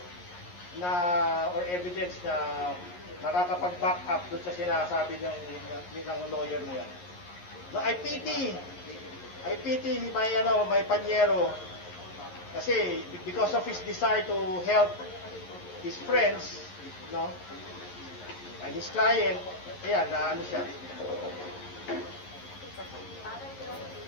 na or evidence na nakakapag-back up doon sa sinasabi ng lawyer na yan. No, I pity my panyero kasi because of his desire to help his friends, no, and his client, ayan, siya.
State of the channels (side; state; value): right; late; 11 ms